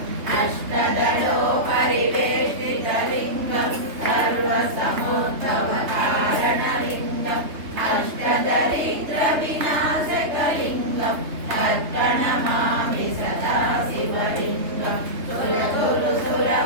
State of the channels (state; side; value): late; left; 3.3 ms